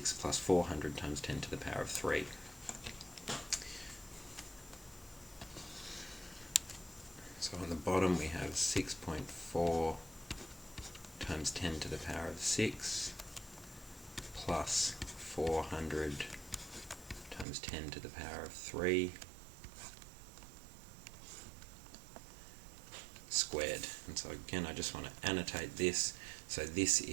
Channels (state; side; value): drops out; left; at 17.4 s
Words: plus 400 times 10 to the power of 3. So on the bottom we have 6.4 times 10 to the power of 6 plus 400 times 10 to the power of 3 squared. And so again, I just want to annotate this. So this